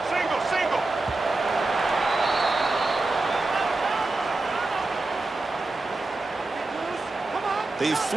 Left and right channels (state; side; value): quieter; left; 3.2 dB